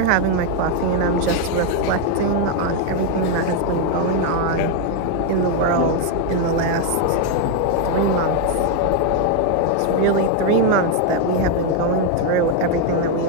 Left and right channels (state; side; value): different; both; correlation 0.01